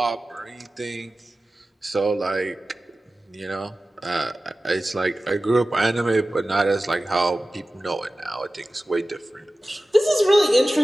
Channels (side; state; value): both; normal; correlation 0.96